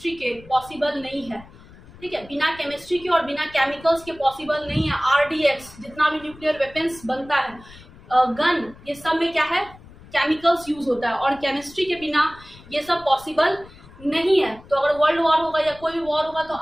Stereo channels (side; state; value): left; noise; rumble, 21 dB below the sound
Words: के पॉसिबल नहीं है। ठीक है, बिना केमिस्ट्री के और बिना केमिकल्स के पॉसिबल नहीं है। आरडीएक्स जितना भी न्यूक्लियर वेपन्स बनता है, गन, ये सब में क्या है, केमिकल्स यूज होता है, और केमिस्ट्री के बिना ये सब पॉसिबल नहीं है। तो अगर वर्ल्ड वॉर होगा या कोई भी वॉर होगा तो